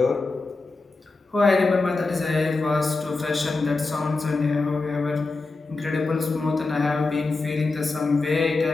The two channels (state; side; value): quieter; right; 3.6 dB